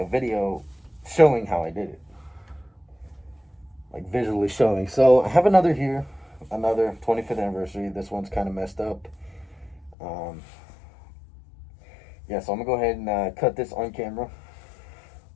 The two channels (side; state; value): right; drops out; at 10.0 s